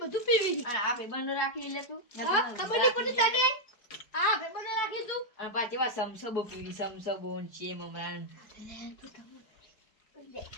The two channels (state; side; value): late; right; 4.8 ms